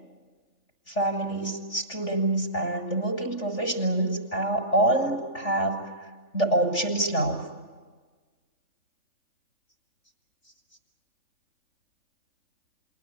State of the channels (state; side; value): late; right; 3.4 ms